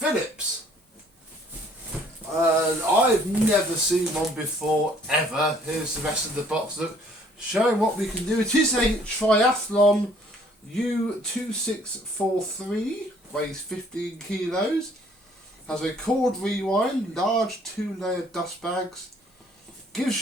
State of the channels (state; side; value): normal; both; correlation 0.59